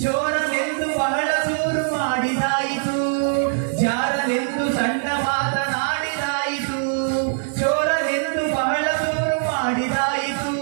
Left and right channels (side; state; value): left; silent; 63 dB below the other